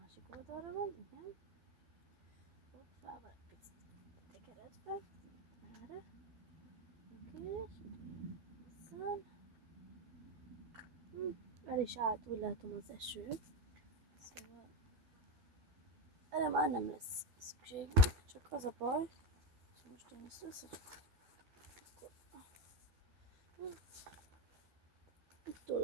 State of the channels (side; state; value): left; late; 12 ms